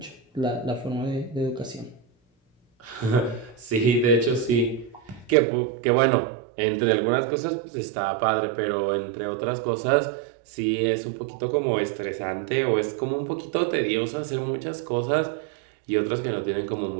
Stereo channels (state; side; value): drops out; left; at 5.4 s